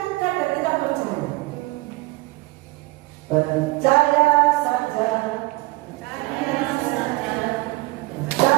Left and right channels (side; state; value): left; quieter; 22.2 dB